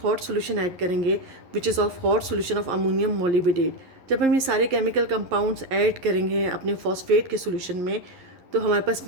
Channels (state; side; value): late; left; 11 ms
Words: सोल्यूशन ऐड करेंगे which is of hot solution of ammonium मोलिबिडेट. जब हम ये सारे केमिकल कंपाउंड्स ऐड करेंगे अपने फॉस्फेट के सोल्यूशन में, तो हमारे पास